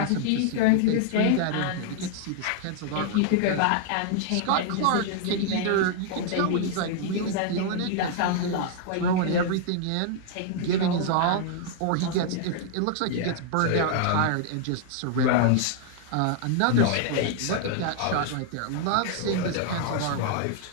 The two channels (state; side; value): different; both; correlation -0.01